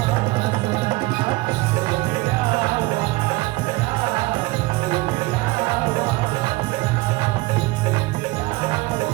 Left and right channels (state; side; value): quieter; left; 21.5 dB